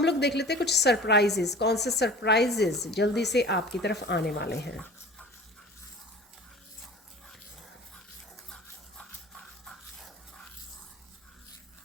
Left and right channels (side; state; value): both; normal; correlation 0.41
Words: लोग देख लेते हैं कुछ सरप्राइजेस, कौन से सरप्राइजेस जल्दी से आपकी तरफ आने वाले हैं।